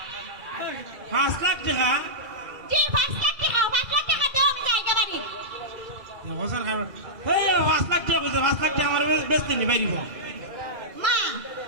5 লাখ টাকা জি 5 লাখ টাকা 5 লাখ টাকা দাও আমি যাই গে বাড়ি হোসেন খান এই 5 লাখ টাকা কইছে 5 লাখ টাকা আমার বেচতে নি বাইরিব মা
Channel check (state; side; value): late; left; 2.3 ms